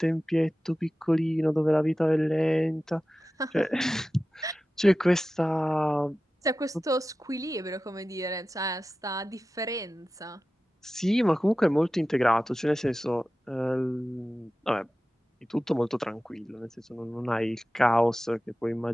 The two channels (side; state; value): both; normal; correlation 0.94